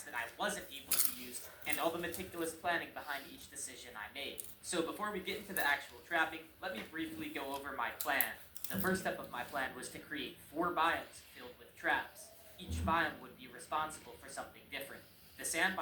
that I wasn't able to use, and all the meticulous planning behind each decision I made. So before we get into the actual trapping, let me briefly go over my plan. The first step of my plan was to create 4 biomes filled with traps. Each biome would be responsible for something different. The sand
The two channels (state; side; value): identical; both; correlation 1.00